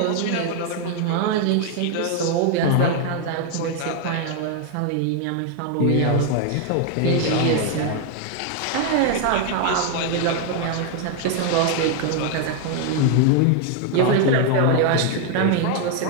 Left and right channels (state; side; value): different; both; correlation 0.00